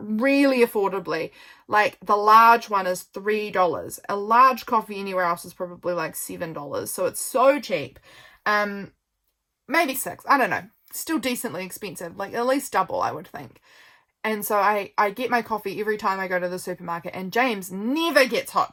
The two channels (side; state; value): both; identical; correlation 1.00